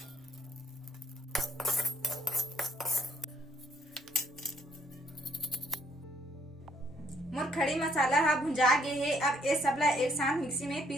मोर खड़ी मसाला हा भुंजा गए है। अब ये सबला एक साथ मिक्सी में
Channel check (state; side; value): normal; both; correlation 0.66